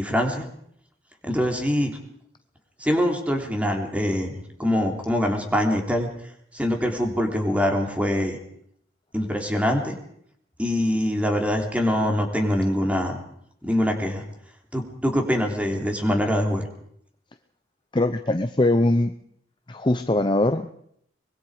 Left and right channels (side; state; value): both; normal; correlation 0.80